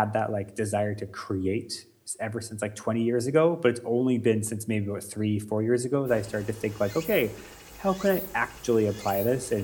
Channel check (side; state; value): both; identical; correlation 1.00